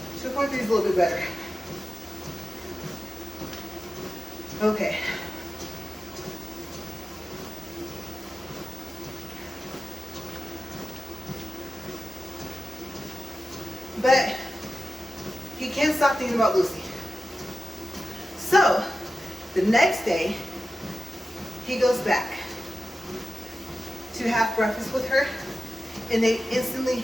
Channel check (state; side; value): normal; both; correlation 0.93